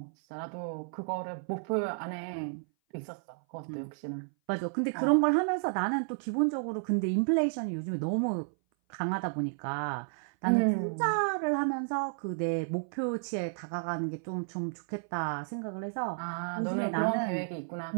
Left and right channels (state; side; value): silent; left; 56 dB below the other